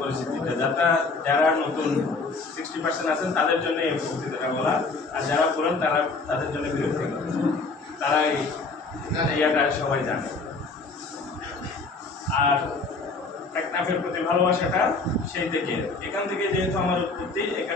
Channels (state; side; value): quieter; right; 3.9 dB